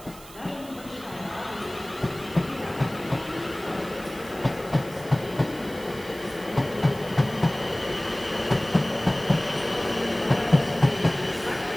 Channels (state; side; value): noise; right; hiss, 19 dB below the sound